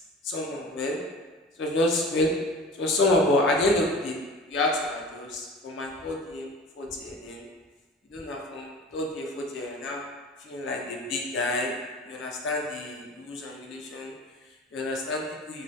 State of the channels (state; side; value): normal; both; correlation 0.39